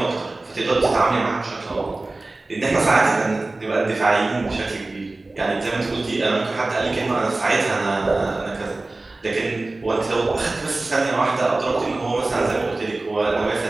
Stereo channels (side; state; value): left; quieter; 3.1 dB